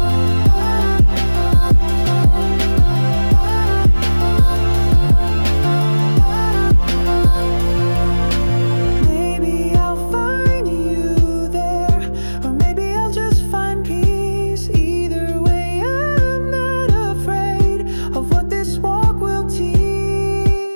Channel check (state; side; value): inverted; both; correlation -1.00